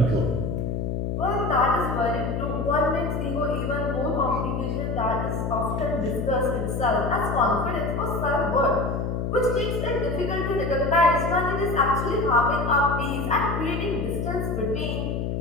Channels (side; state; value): left; noise; hum, 1 dB below the sound